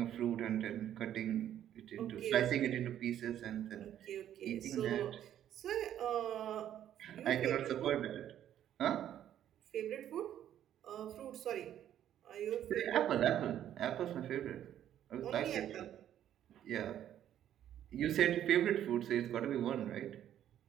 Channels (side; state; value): left; quieter; 10.9 dB